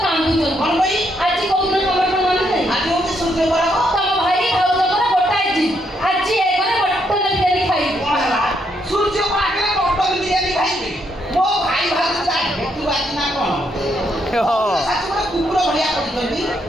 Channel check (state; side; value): normal; both; correlation 0.75